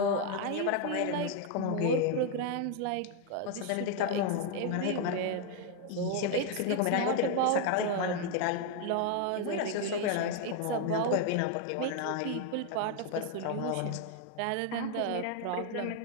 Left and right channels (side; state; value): both; different; correlation 0.01